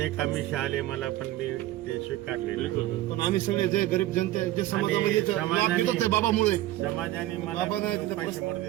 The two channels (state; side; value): quieter; left; 15.6 dB